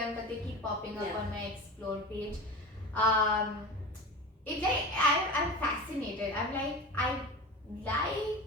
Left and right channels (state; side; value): normal; both; correlation 0.30